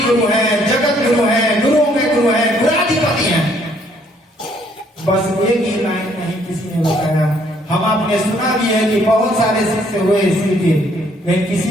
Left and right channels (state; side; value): normal; both; correlation 0.65